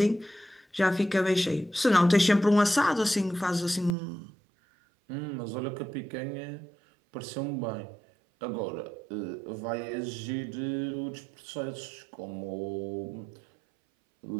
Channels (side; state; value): left; drops out; at 4.0 s